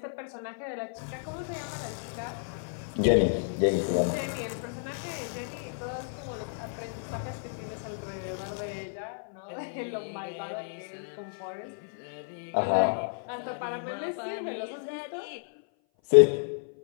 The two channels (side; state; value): right; silent; 56 dB below the other